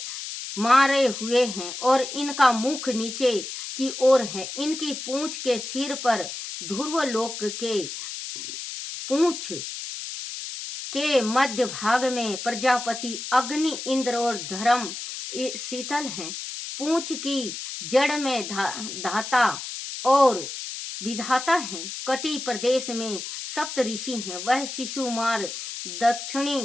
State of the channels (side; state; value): left; noise; hiss, 8 dB below the sound